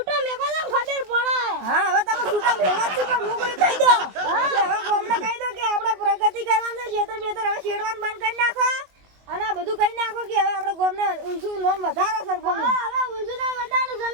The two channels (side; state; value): left; late; 22 ms